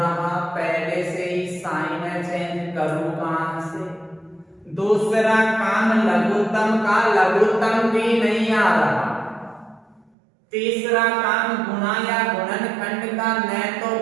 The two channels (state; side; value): drops out; left; at 10.1 s